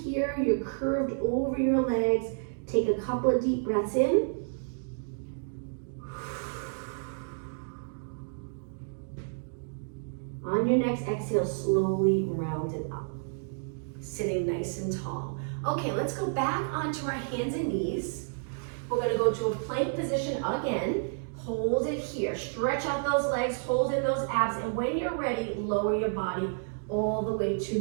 You're curved over your legs. Take a couple of deep breaths in. On your next exhale, slowly round it up. Sitting nice and tall. Okay, let's go back onto our hands and knees. We're gonna go to a plank position again. Hold it here. Stretch out those legs, hold in those abs, and when you're ready, lower your body all the way to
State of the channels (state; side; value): silent; left; digital silence